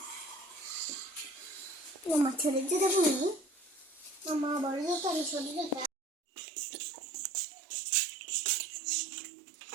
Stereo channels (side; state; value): left; drops out; at 5.9 s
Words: মামা ছেড়ে যেতে বলি, মামা বড় যেতে আমি ছোট যেতে।